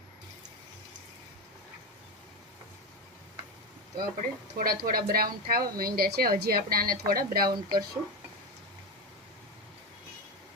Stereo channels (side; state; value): both; normal; correlation 0.15